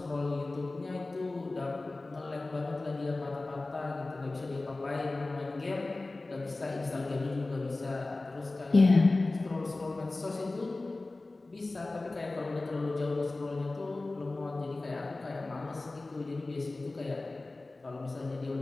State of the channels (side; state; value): right; quieter; 3.1 dB